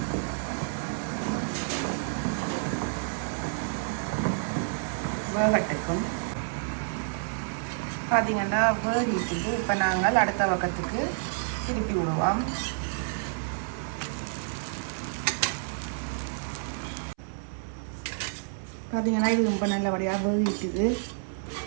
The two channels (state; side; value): silent; left; 58 dB below the other